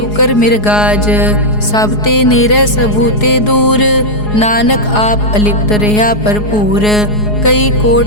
मिर्गाज। सब ते नेरे सबूते दूर, नानक आप अलिप्त रहा भरपूर। कई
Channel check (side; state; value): right; late; 4.8 ms